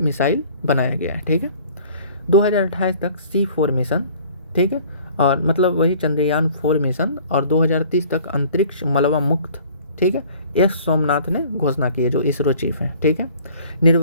बनाया गया है, ठीक है। 2028 तक C4 मिशन, ठीक है, और मतलब वही चंद्रयान 4 मिशन, और 2030 तक अंतरिक्ष मलबा मुक्त, ठीक है। S सोमनाथ ने घोषणा की है जो इसरो चीफ हैं, ठीक है।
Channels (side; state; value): both; inverted; correlation -0.51